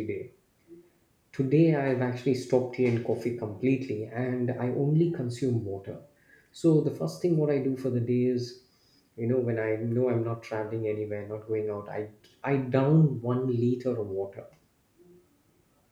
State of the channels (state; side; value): identical; both; correlation 1.00